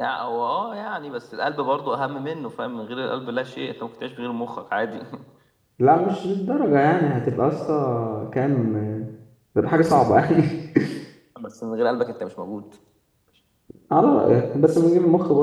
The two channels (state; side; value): identical; both; correlation 1.00